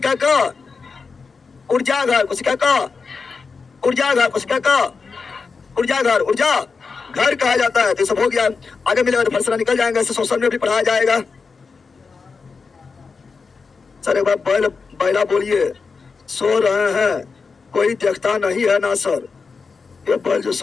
का ऊर्जा घर, कोशिका का ऊर्जा घर, कोशिका का ऊर्जा घर, ऊर्जा घर कहा जाता है। तो सब हो गया। आगे मिलेगा तो फलसला निकल जाएंगे। इसे सोशल में भी पढ़ाया जाएगा। सर एक बार बैला बोलिए। सो रहे हैं, कोई देखता नहीं है ना सर। ये बैल जो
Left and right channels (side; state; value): right; quieter; 4.9 dB